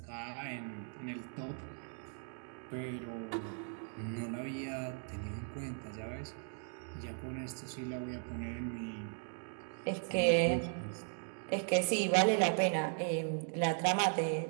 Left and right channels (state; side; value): silent; left; 53 dB below the other